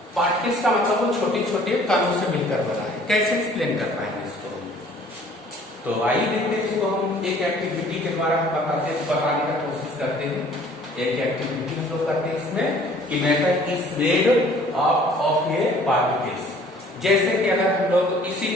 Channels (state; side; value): normal; both; correlation 0.54